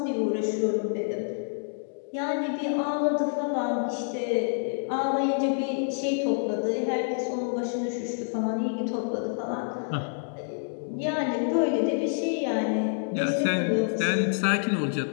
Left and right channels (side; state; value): right; silent; digital silence